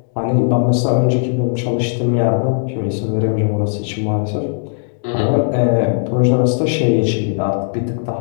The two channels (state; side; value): silent; right; digital silence